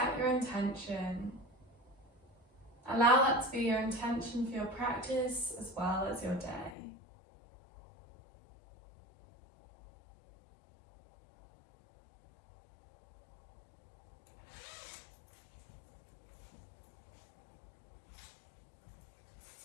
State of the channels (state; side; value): drops out; right; at 6.8 s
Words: your intention, allow that to be your intention for your practice as well as your day.